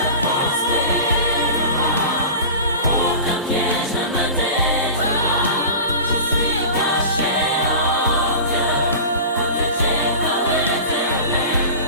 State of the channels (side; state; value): both; inverted; correlation -0.33